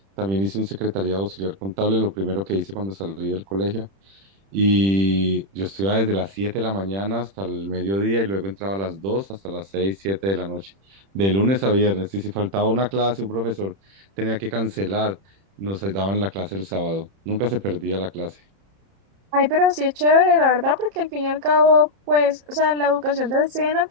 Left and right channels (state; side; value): late; left; 30 ms